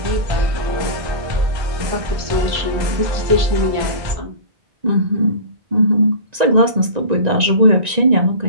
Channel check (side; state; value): left; late; 1.9 ms